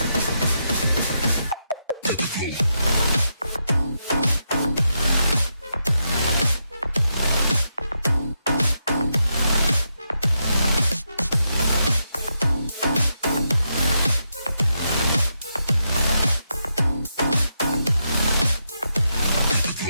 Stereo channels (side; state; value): both; inverted; correlation -0.83